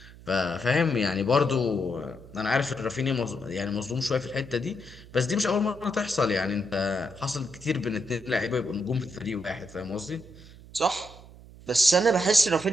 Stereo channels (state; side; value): noise; right; hum, 19 dB below the sound